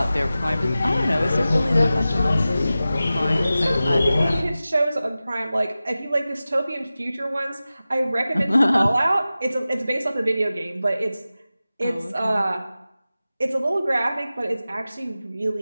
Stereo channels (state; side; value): inverted; both; correlation -0.95